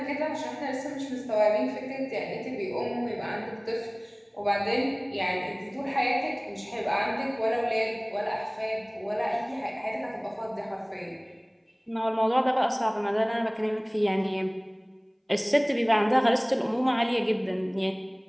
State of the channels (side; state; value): both; identical; correlation 1.00